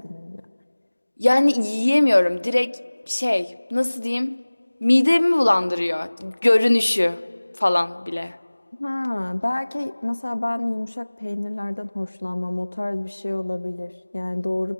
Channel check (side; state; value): both; inverted; correlation -1.00